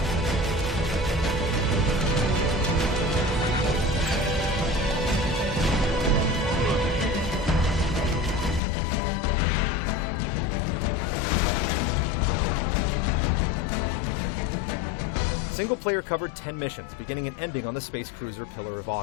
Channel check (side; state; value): right; drops out; at 8.6 s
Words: Single player covered 10 missions, beginning and ending on the space cruiser Pillar of